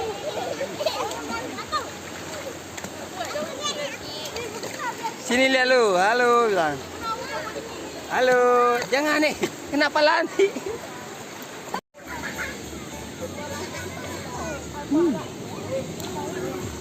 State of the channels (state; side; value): identical; both; correlation 1.00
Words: Sini lihat lu, halo bilang. Halo, jangan nih, kenapa lari?